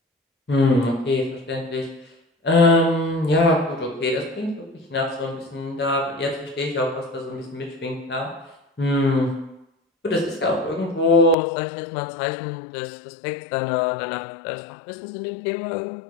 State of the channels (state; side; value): drops out; right; at 11.4 s